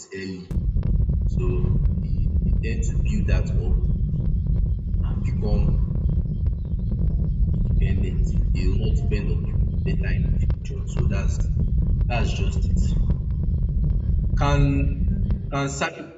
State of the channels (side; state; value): both; identical; correlation 1.00